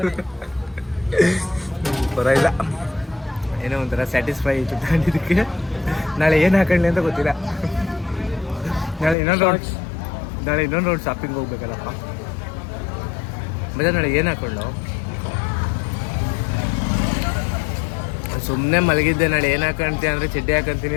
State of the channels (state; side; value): drops out; right; at 9.2 s